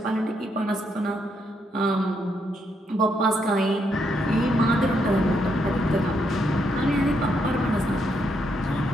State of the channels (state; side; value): normal; both; correlation 0.77